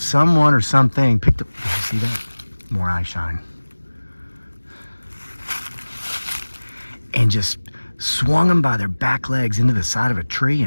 or something picked up. Did you see that? More eye shine. And just swung them by their back legs into the side of a tree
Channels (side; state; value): both; inverted; correlation -1.00